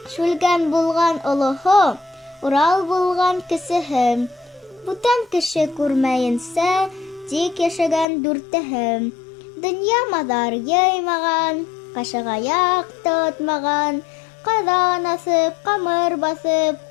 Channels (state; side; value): drops out; right; at 8.1 s